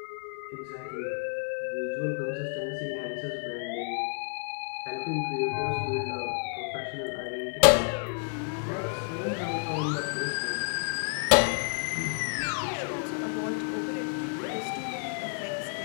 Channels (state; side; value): silent; right; 58 dB below the other